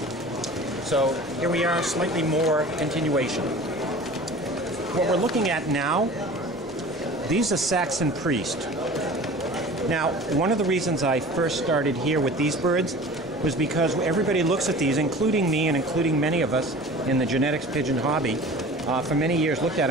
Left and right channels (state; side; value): normal; both; correlation 0.41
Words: So here we are, slightly more continuation. What we're looking at now, these are Saxon Priest. Now, one of the reasons I first started here with these birds was because everybody looks at these, including me and including many of us in the genetics pigeon hobby, for many years looked at